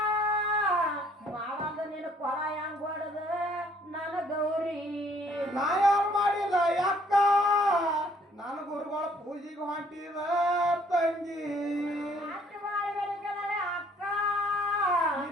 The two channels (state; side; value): normal; both; correlation 0.61